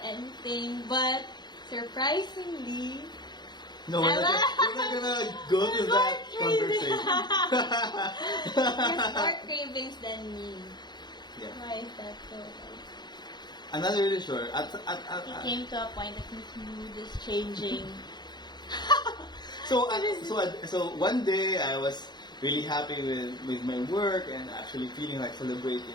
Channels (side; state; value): right; late; 0.21 ms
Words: anything. But surprisingly, no, we're not gonna go to that conversation. There's more cravings than me. Yeah. Why is that so? I'm not really sure. It came to a point that his mood is changing. So one day I was really happy with my work and actually feeling like